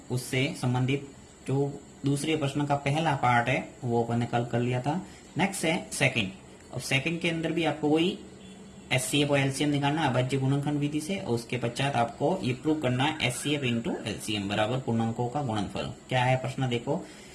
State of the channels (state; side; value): identical; both; correlation 1.00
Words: उससे संबंधित जो दूसरे प्रश्न का पहला पार्ट है वो अपन ने कल कर लिया था। नेक्स्ट है सेकंड। अब सेकंड के अंदर भी आपको वही एचसीएफ और एलसीएम निकालना है अभाज्य गुणनखंड विधि से, और उसके पश्चात आपको ये प्रूव करना है एचसीएफ इंटू एलसीएम बराबर पूर्णांकों का गुणनफल। क्या है प्रश्न देखो,